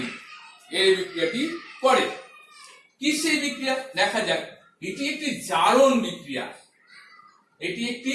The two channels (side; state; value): both; identical; correlation 1.00